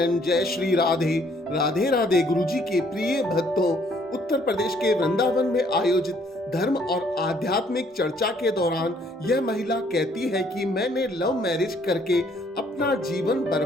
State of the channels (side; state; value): both; normal; correlation 0.64